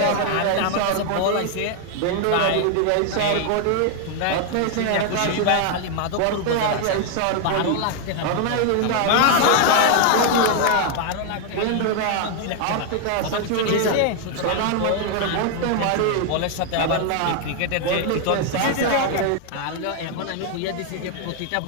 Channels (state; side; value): different; both; correlation 0.00